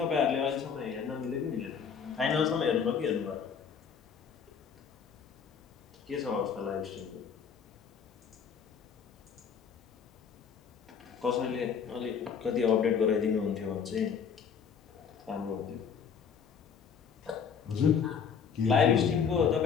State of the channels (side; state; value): right; quieter; 6.8 dB